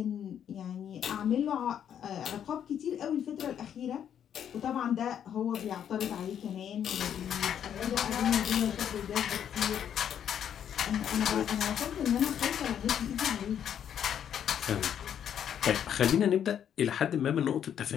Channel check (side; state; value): right; quieter; 9.2 dB